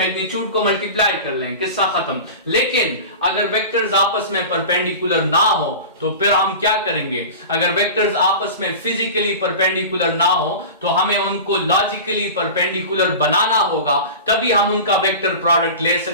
को मल्टीप्लाई कर लें, किस्सा खत्म। लेकिन अगर वेक्टर्स आपस में परपेंडिकुलर ना हो तो फिर हम क्या करेंगे? अगर वेक्टर्स आपस में फिजिकली परपेंडिकुलर ना हो तो हमें उनको लॉजिकली परपेंडिकुलर बनाना होगा, तभी हम उनका वेक्टर प्रोडक्ट ले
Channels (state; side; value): inverted; both; correlation -0.32